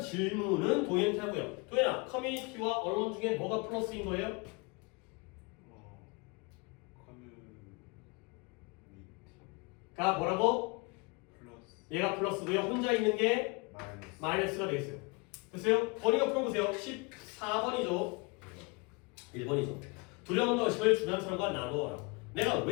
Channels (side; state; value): right; quieter; 29.3 dB